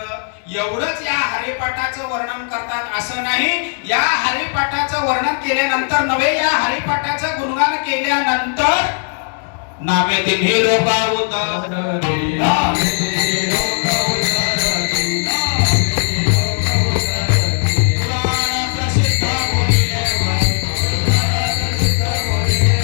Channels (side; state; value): right; silent; 58 dB below the other